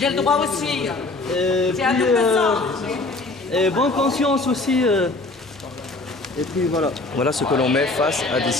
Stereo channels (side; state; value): right; quieter; 3.2 dB